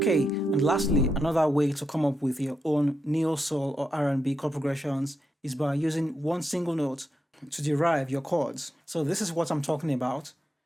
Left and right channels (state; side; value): normal; both; correlation 0.85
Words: and lastly, another way to come up with your own neo-soul or R&B chord progressions is by using one single note to derive your chords. So this is what I'm talking about.